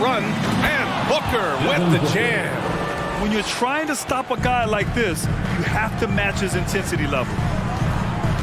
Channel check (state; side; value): identical; both; correlation 1.00